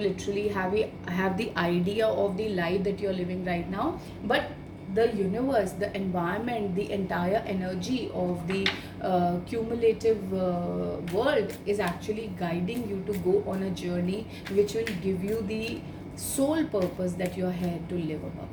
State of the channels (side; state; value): both; identical; correlation 1.00